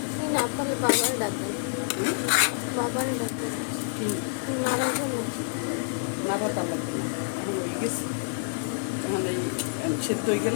না পারলে বাবার ডাকবেন, বাবার ডাকবেন নাড়ার জন্য। নাড়া তা লাগবে না, এখন হয়ে গেছে। এখন এই সেদ্ধ হয়ে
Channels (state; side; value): silent; right; digital silence